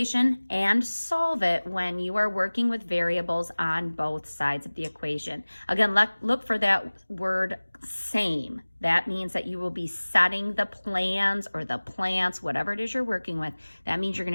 and solve it when you are working with variables on both sides of the equation. Again, look for that word same. That means that you will be setting the plans or the plants, whatever it is you're working with. That means you're going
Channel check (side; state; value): both; inverted; correlation -1.00